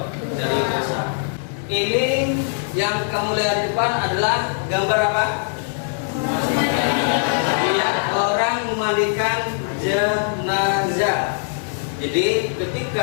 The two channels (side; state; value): right; silent; 65 dB below the other